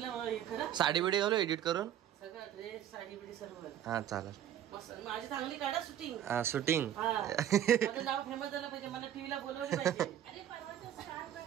साडी बिडी घालू एडिट करून. सगळं साडी बिडी सर्व. हा चालेल. माझी चांगली काढा शूटिंग. हा शूटिंग. माझं नाव फेमस झालं पाहिजे, मला टीव्हीला बोलवलं पाहिजे.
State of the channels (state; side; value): quieter; left; 10.8 dB